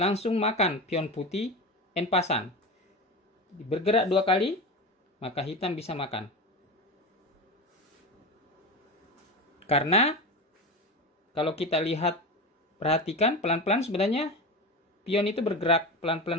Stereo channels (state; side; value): normal; both; correlation 0.24